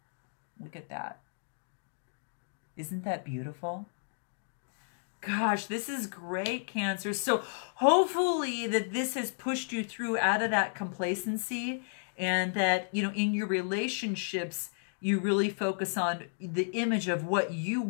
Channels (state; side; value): silent; right; digital silence